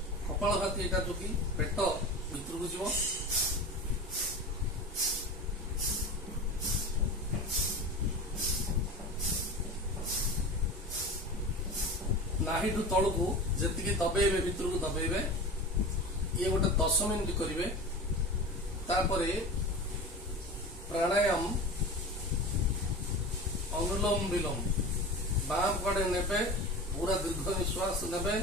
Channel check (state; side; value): normal; both; correlation 0.30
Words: कपालभाति एटा जो कि पेट भितर को जीव। नाहिडू तल को जी दबेबे भितर को दबेबे। ये गोटे 10 मिनिट करेंगे। तापरे प्राणायाम अनुलोम विलोम बाम पटे नेबे, पूरा दीर्घ निश्वास नेबे,